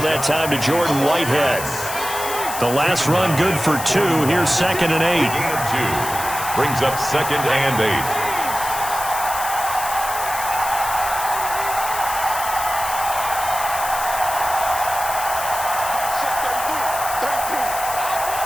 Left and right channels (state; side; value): noise; left; hiss, 7 dB below the sound